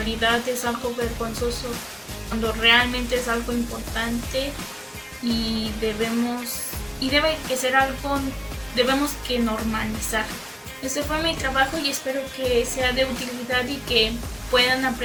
es algo vergonzoso cuando realmente es algo importante y debe que ser algo, debemos que normalizar. Este fue mi trabajo y espero que sea de utilidad y que puedan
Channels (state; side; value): identical; both; correlation 1.00